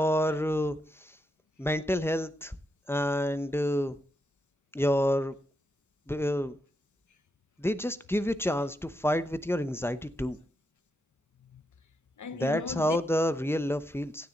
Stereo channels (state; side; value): normal; both; correlation 0.83